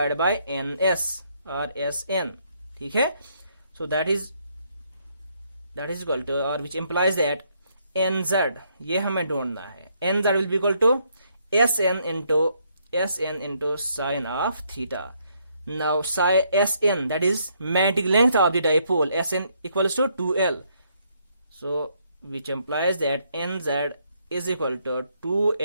by NS और SN. ठीक है. So that is equal to, or which implies that NZ, ये हमें ढूंढना है, NZ will be equal to SN into sine of theta. Now SN, that is magnetic length of the dipole, SN equals to 2L. So which implies that NZ is equal to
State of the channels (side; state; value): both; inverted; correlation -0.72